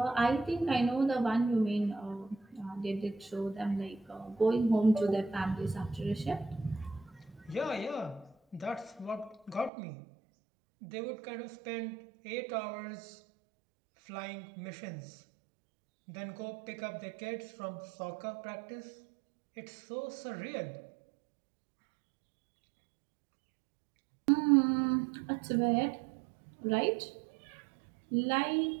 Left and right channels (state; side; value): drops out; left; at 9.7 s